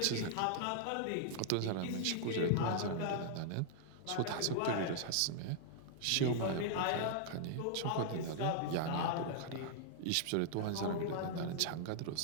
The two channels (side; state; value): both; different; correlation -0.01